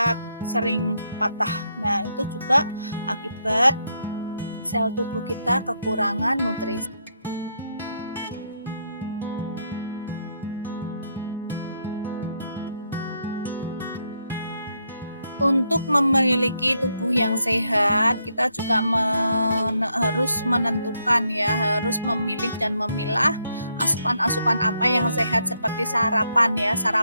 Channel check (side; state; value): both; inverted; correlation -0.77